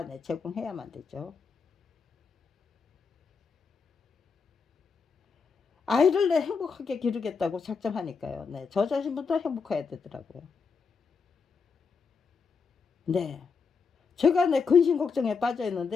네, 제공해야만 되죠. 아이를 내 행복하게 기르겠다고 작정하니까요. 네, 저 자신부터 행복해야 되더라고요. 네, 제가 내 근심 걱정에 빠져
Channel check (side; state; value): right; quieter; 5.4 dB